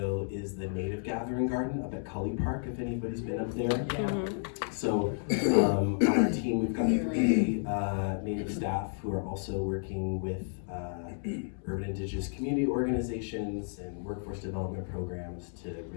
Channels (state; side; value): silent; right; digital silence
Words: is the native gathering garden up at Cully Park, if anybody's been up there. Mm-hmm. So on our team, we've got 3 native staff who are also working with urban indigenous community organizations and workforce development programs to